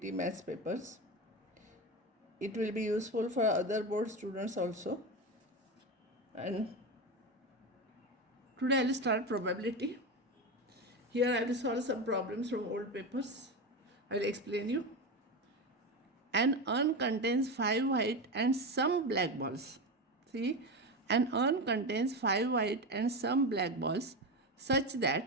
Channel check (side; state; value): both; normal; correlation 0.19